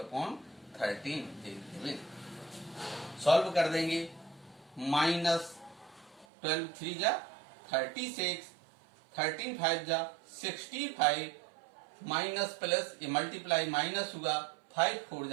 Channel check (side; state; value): left; drops out; at 6.2 s